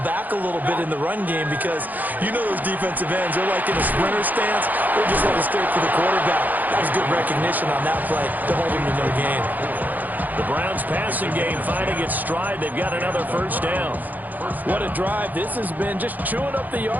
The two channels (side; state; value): left; late; 0.083 ms